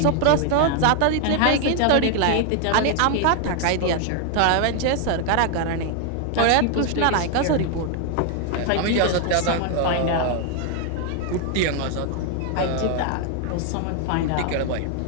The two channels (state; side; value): different; both; correlation 0.00